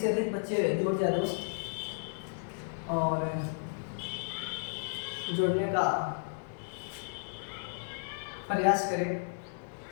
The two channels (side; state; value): right; silent; digital silence